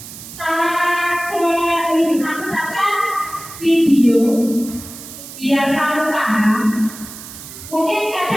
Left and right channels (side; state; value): right; noise; hiss, 14 dB below the sound